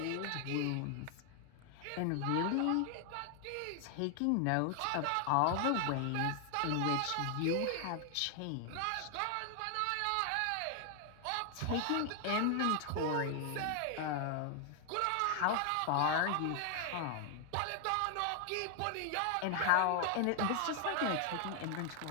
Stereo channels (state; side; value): different; both; correlation 0.00